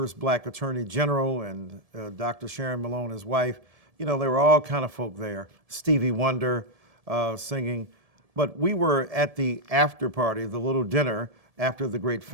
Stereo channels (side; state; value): left; late; 1.7 ms